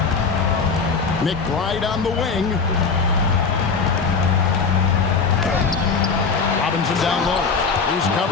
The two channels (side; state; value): right; quieter; 5.1 dB